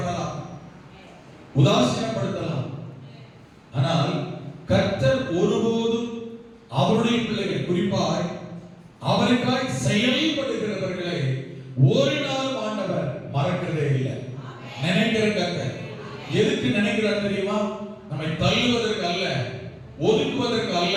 உதாசீனப்படுத்தலாம். ஆனால் கர்த்தர் ஒருபோதும் அவருடைய பிள்ளைகள், குறிப்பாய் அவருக்காய் செயல்படுகிறவர்களை ஒரு நாள் ஆண்டவர் மறக்கிறதே இல்லை. நினைக்கிற கர்த்தர் எதுக்கு நினைக்கிறார் தெரியுமா? நம்மை தள்ளுவதற்கு அல்ல, ஒதுக்குவதற்கு அல்ல,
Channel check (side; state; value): both; identical; correlation 1.00